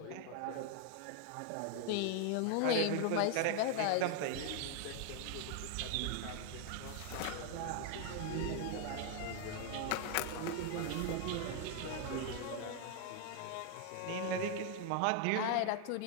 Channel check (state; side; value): different; both; correlation 0.00